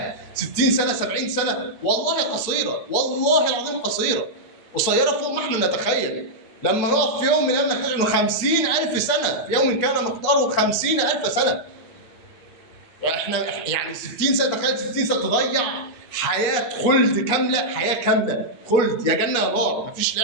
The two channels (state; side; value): late; right; 8.4 ms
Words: 60 سنه 70 سنه والله قصيره، والله العظيم قصيره فوق ما احنا نتخيل. لما نقف في يوم من الايام نكتشف انه 50,000 سنه، في يوم كان مقداره 50,000 سنه. يعني 60 سنه، تخيل 60 سنه تضيع حياه خلد كامله، حياه كامله خلد، يا جنه يا نار، مفيش